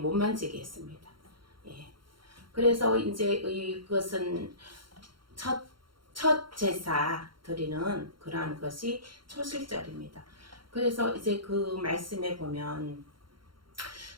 만지게 했습니다. 그래서 이제 이것은 첫 제사 드리는 그러한 것이 초실절입니다. 그래서 이제 그 말씀에 보면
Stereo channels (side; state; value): left; late; 0.73 ms